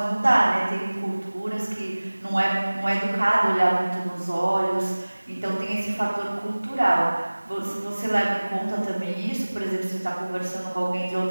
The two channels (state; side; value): inverted; both; correlation -1.00